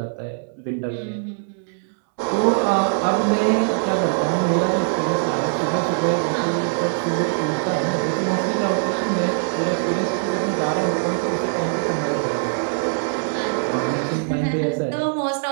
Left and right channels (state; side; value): silent; left; digital silence